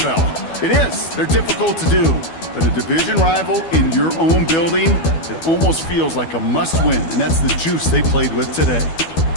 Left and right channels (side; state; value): right; late; 12 ms